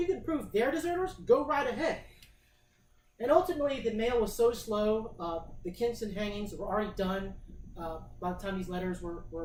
can prove they're deserters, go right ahead. And ultimately, the mail was so slow, the Kinston hangings were already done by the time these letters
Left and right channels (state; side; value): identical; both; correlation 1.00